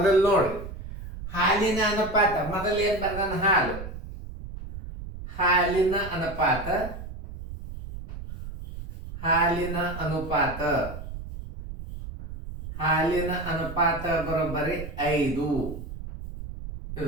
ನೋಡಿ, ಹಾಲಿನ ಅನುಪಾತ ಮೊದಲು ಏನು ಬರ್ದಾನ? ಹಾಲು. ಹಾಲಿನ ಅನುಪಾತ ಬರೋಬ್ಬರಿ 5,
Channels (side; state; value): right; noise; rumble, 10 dB below the sound